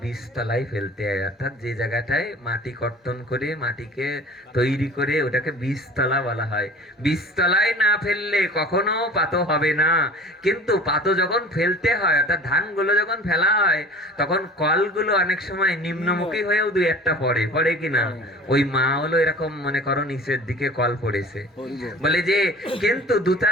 বীজতলায় ফেলতে হয়, অর্থাৎ যে জায়গাটায় মাটি কর্তন করে মাটিকে তৈরি করে ওটাকে বীজতলা বলা হয়। বীজতলায় না ফেললে কখনো পাতো হবে না। কিন্তু পাতো যখন ফেলতে হয়, অর্থাৎ ধানগুলো যখন ফেলা হয়, তখন কলগুলো অনেক সময় নিম্নমুখী হয়েও 2-1টা পড়ে কিনা? ওই মা হলো এরকম মনে করো নিচের দিকে কল পড়েছে, বলে যে কিন্তু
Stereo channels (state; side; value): normal; both; correlation 0.42